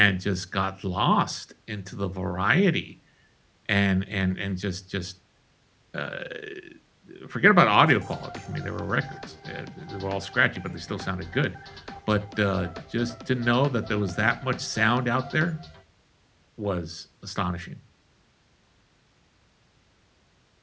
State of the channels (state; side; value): identical; both; correlation 1.00